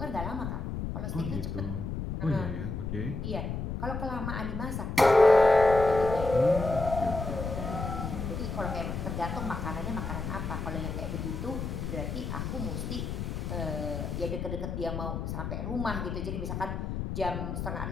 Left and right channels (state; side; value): noise; left; rumble, 4 dB below the sound